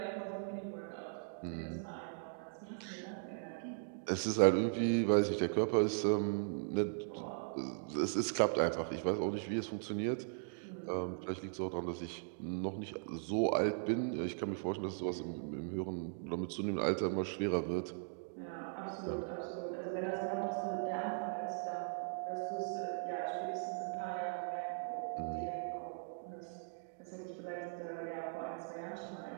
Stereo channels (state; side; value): silent; left; digital silence